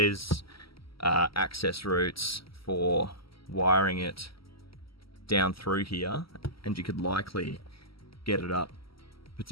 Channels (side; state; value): right; late; 0.75 ms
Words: access routes for wiring it down through here, and you could likely get it up